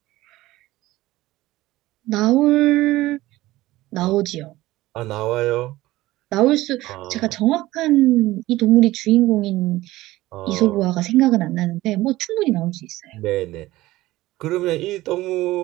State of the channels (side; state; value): left; quieter; 17.5 dB